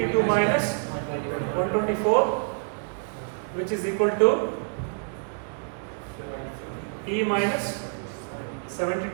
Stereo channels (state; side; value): silent; left; 56 dB below the other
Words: minus 124, which is equal to E minus